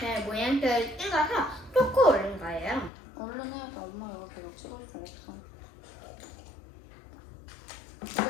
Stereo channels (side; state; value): right; drops out; at 2.9 s